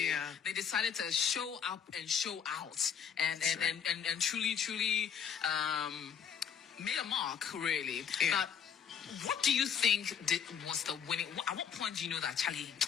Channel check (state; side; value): quieter; right; 7.7 dB